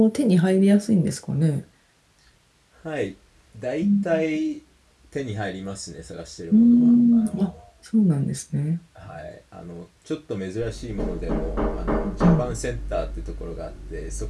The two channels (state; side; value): identical; both; correlation 1.00